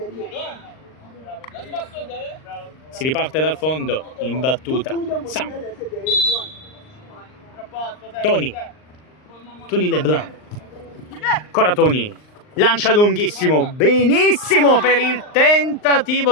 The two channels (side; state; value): right; late; 39 ms